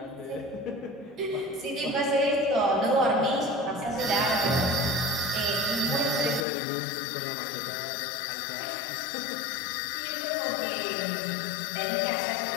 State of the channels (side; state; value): right; drops out; at 6.5 s